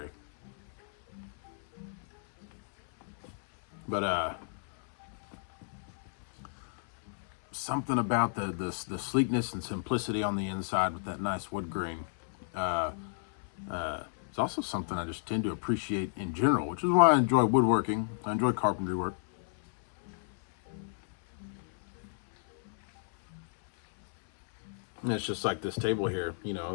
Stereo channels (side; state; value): right; silent; 56 dB below the other